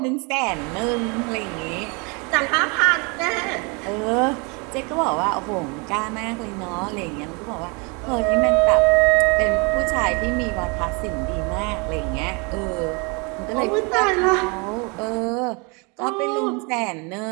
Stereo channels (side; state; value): left; quieter; 31.1 dB